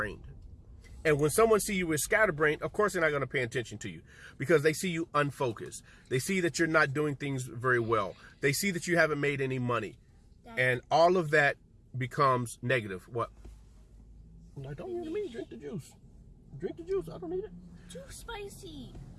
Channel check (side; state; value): both; identical; correlation 1.00